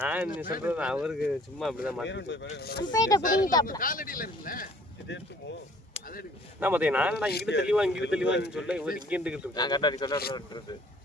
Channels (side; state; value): both; normal; correlation 0.55